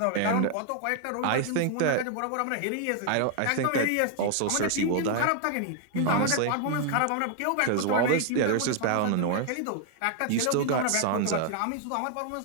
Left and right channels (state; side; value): different; both; correlation 0.00